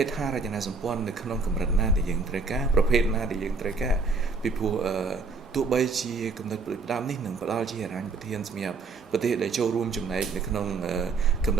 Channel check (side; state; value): left; quieter; 4.2 dB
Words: េដ្ឋារចនាសម្ព័ន្ធនៅក្នុងកម្រិតណាដែលយើងត្រូវការប្រភេទណាដែលយើងត្រូវការពីព្រោះទោះបីជាគំនិតផ្ដាំនេះនឹងផ្ដល់ជាហិរញ្ញប្បទានសម្រាប់ប្រទេសដែលចូលរួមចំណែកនៅក្នុងគំន